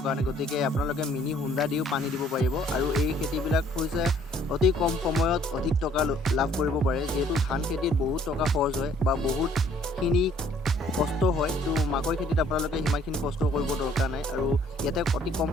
কাৰণে। গতিকে আপোনালোকে মিনি হোণ্ডা দিও পানী দিব পাৰিব আৰু এই খেতিবিলাক হৈছে অতি কম সময়ত অধিক টকা লাভ কৰিব পাৰে। যিহেতু ধান খেতিত বহুত টকা খৰচ হয় বা বহুতখিনি কষ্ট হয়, তো মাকৈ খেতিত আপোনালোকে সিমানখিনি কষ্ট কৰিব দৰকাৰ নাই আৰু ইয়াতে অতি কম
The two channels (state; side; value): normal; both; correlation 0.60